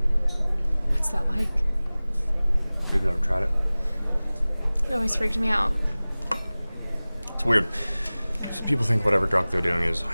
What's that like? You've never tried it? It always freaked me out. It's weird. So people think whatever drug they're doing is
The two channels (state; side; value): inverted; both; correlation -0.99